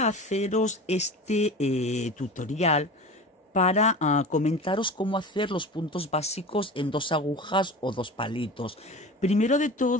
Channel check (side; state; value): both; normal; correlation 0.33